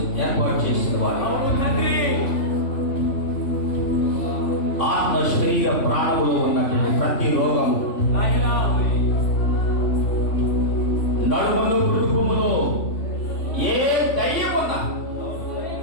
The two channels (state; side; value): late; right; 3.5 ms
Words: ఏర్పాటు చేసిన వాడు, ఆత్మ శరీర ప్రాణములో ఉన్నటువంటి ప్రతి రోగం, నడుములో కుటుంబములో ఏ దయ్యం ఉన్నా,